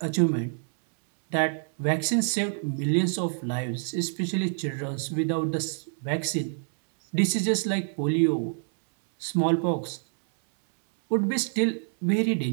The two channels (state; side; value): silent; left; 60 dB below the other